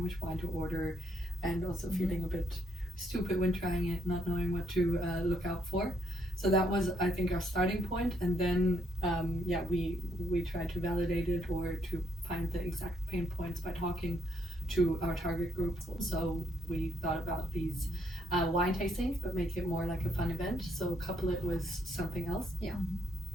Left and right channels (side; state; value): both; normal; correlation 0.74